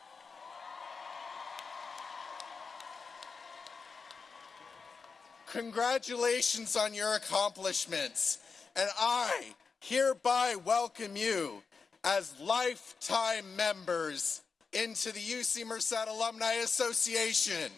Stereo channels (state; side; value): quieter; right; 5.0 dB